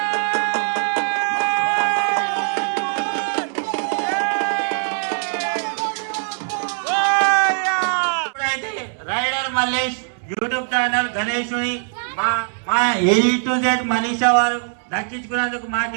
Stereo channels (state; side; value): silent; left; digital silence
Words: రైడర్ మల్లేష్ యూట్యూబ్ ఛానల్ గణేషుని మా A to Z మనీషా వారు దక్కించుకున్నందుకు మాకు